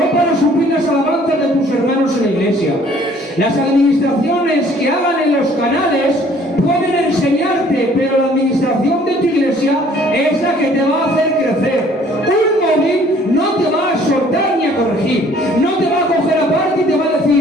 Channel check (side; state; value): both; normal; correlation 0.57